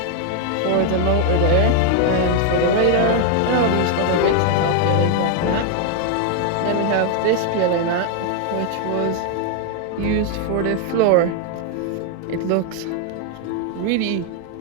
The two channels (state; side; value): different; both; correlation 0.00